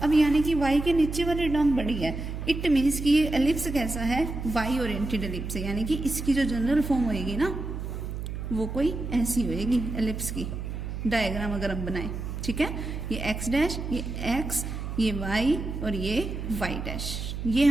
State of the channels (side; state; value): right; noise; hum, 6 dB below the sound